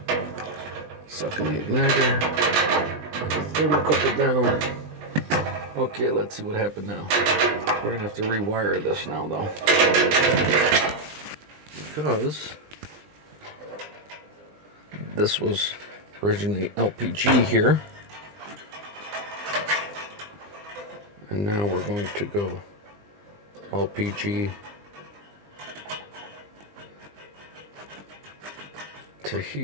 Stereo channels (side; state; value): left; late; 20 ms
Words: Sucking the igniter. Put the thermocouple down. Okay, let's see what happened now. We're gonna have to rewire this now, though, because this was originally LPG here, and now we're going to go LPG to